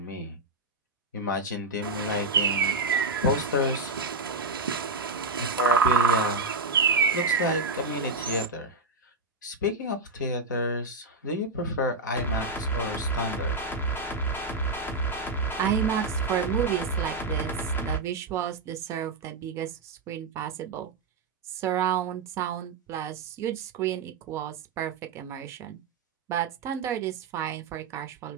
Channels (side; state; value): left; quieter; 3.5 dB